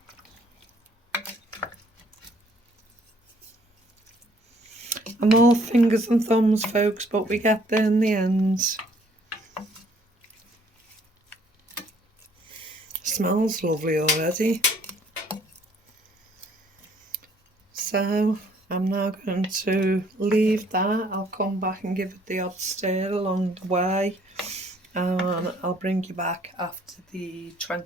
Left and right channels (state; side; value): normal; both; correlation 0.62